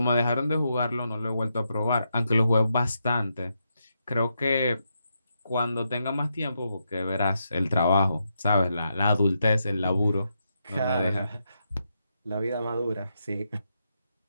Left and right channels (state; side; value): inverted; both; correlation -0.83